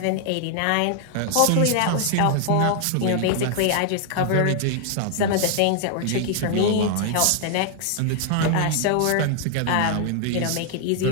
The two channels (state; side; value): different; both; correlation 0.00